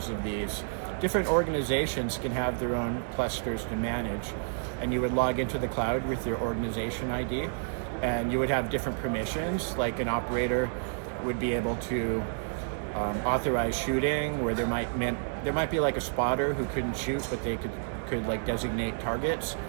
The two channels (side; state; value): left; silent; 58 dB below the other